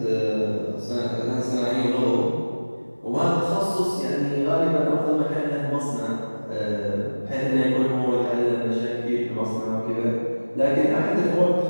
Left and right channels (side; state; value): both; inverted; correlation -1.00